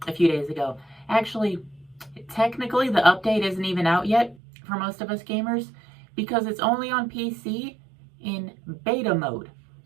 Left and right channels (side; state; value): left; drops out; at 4.4 s